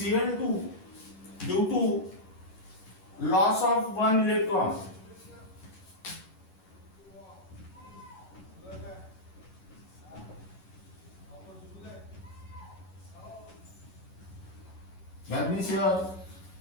due to loss of one electron. That means here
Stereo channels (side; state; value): right; late; 11 ms